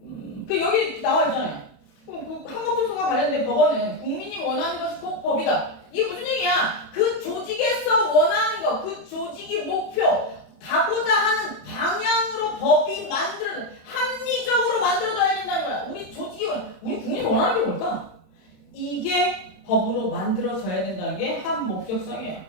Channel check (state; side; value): late; right; 27 ms